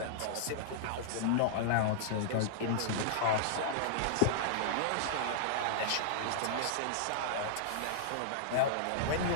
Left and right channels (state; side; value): different; both; correlation -0.02